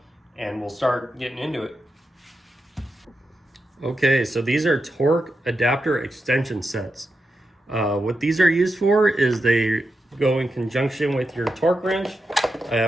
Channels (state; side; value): normal; both; correlation 0.88